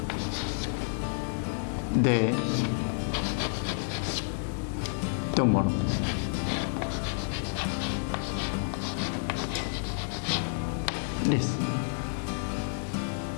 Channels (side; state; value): right; silent; digital silence